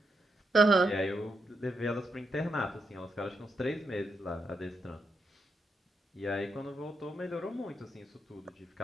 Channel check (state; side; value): normal; both; correlation 0.82